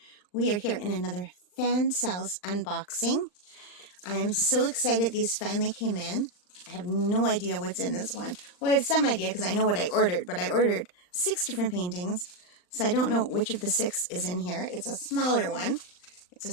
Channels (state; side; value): late; right; 39 ms